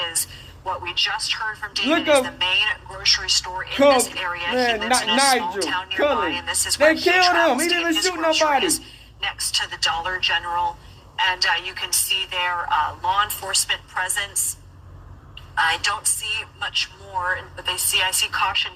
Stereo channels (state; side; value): identical; both; correlation 1.00